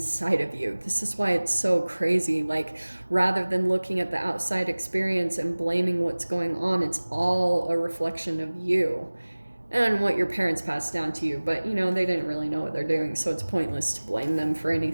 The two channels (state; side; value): inverted; both; correlation -1.00